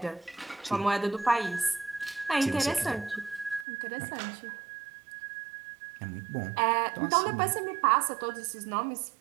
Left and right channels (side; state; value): left; drops out; at 3.7 s